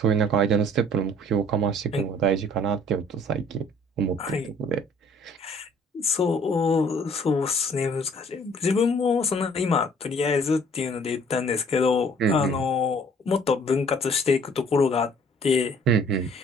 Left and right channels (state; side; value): normal; both; correlation 0.56